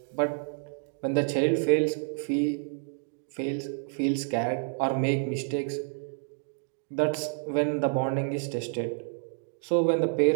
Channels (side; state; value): left; silent; digital silence